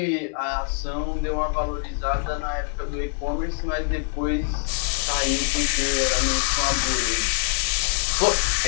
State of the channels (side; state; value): right; silent; digital silence